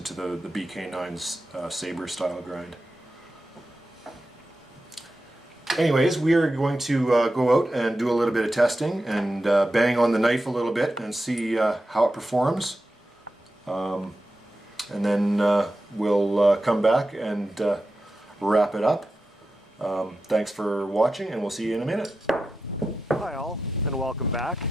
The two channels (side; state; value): both; normal; correlation 0.91